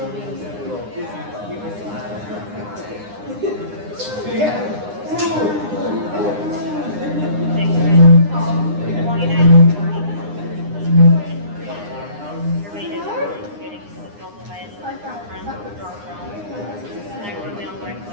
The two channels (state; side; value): late; left; 9.8 ms